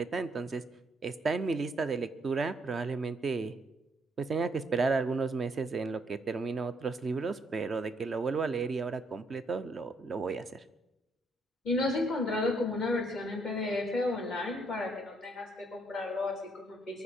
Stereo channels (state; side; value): normal; both; correlation 0.71